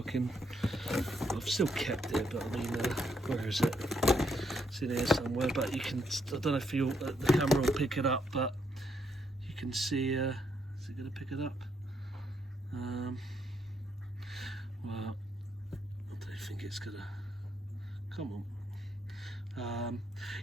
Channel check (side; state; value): both; normal; correlation 0.75